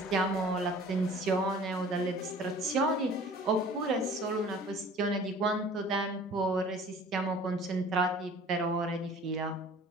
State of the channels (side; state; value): both; normal; correlation 0.47